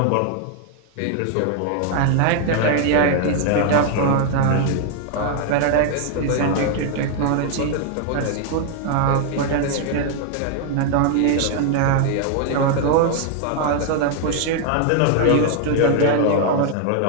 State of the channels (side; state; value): both; different; correlation 0.00